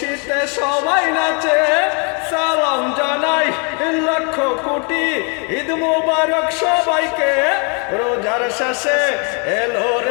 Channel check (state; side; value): quieter; right; 36.5 dB